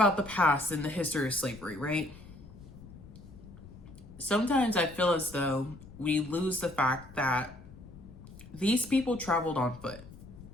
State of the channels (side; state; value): left; noise; rumble, 18 dB below the sound